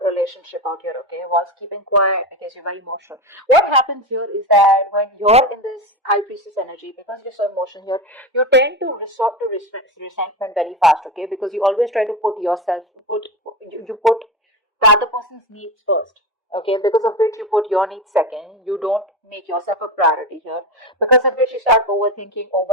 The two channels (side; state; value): both; normal; correlation 0.20